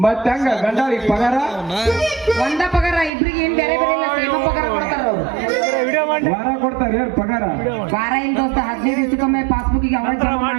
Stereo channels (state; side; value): drops out; left; at 3.1 s